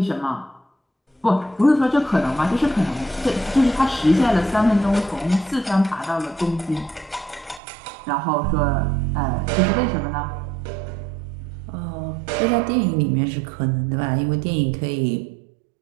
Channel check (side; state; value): left; drops out; at 7.6 s